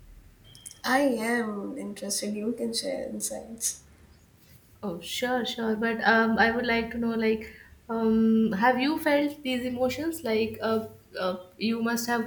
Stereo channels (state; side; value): identical; both; correlation 1.00